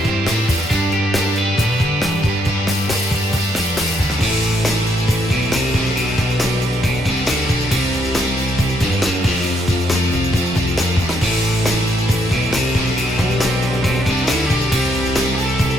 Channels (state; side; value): normal; both; correlation 0.74